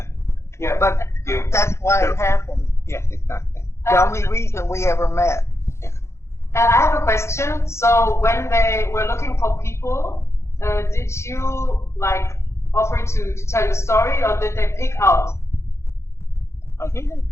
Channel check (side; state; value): right; late; 0.13 ms